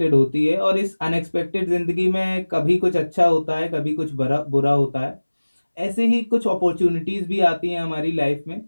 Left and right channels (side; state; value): both; inverted; correlation -1.00